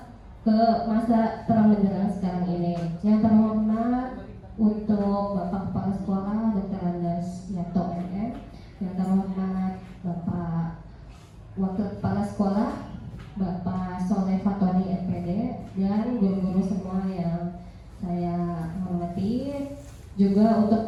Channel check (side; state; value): both; identical; correlation 1.00